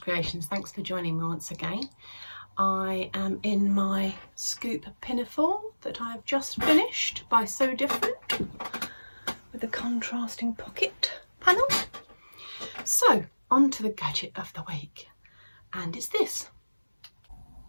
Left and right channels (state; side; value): inverted; both; correlation -1.00